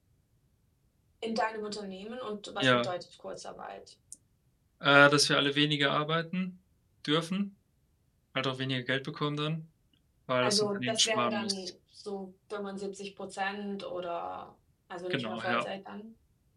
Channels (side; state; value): both; identical; correlation 1.00